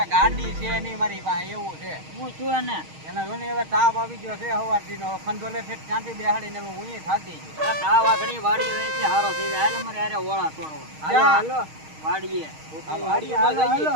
ગાડી છે નહીં મારી પાસે, એવું છે. હું છું એને મને હવે તાપ આવી ગયો છે સવારથી નો. ખંધોલે છે ત્યાંથી બેહાડીને હું થાકી ગયો. તાવ આગળ વાડી રહી છે, હારો થઈ જાય. હાલો મારે આરે ઓળા છોડો. હાલો હાલો વાડીએ. વાડીએ હાલો હાલો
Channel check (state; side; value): late; left; 6.4 ms